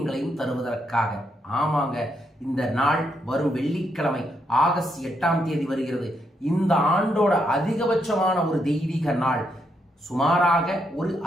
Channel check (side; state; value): both; normal; correlation 0.78